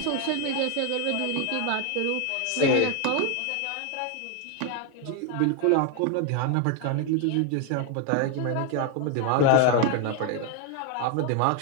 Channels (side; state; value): both; different; correlation 0.01